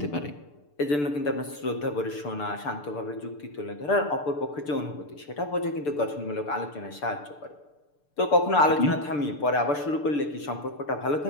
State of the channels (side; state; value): right; late; 6.8 ms